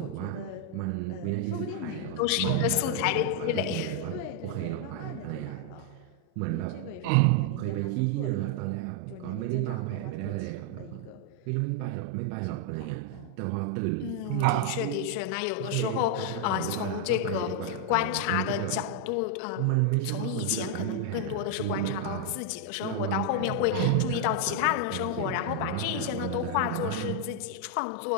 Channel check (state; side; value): different; both; correlation 0.00